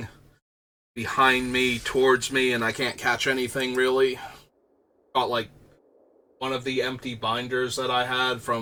behind me, towards me, and I can't catch anything really. Got like one of the empty binders that I had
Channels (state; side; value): identical; both; correlation 1.00